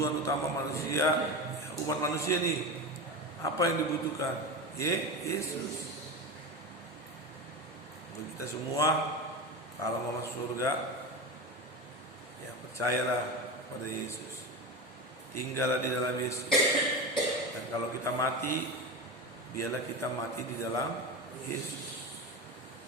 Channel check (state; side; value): normal; both; correlation 0.23